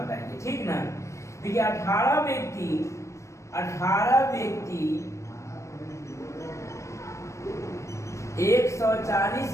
ठीक ना? देखिए 18 व्यक्ति 140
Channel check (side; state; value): right; late; 0.15 ms